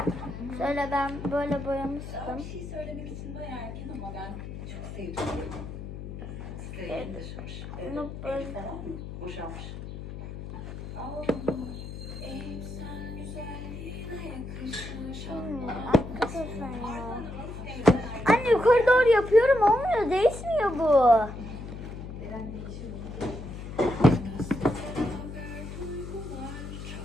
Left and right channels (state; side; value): noise; left; hum, 9 dB below the sound